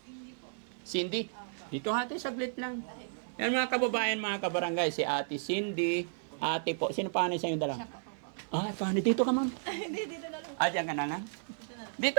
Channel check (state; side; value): silent; left; digital silence